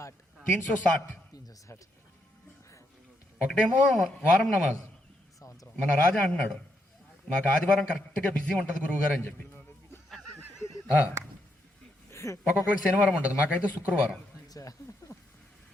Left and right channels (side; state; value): both; normal; correlation 0.78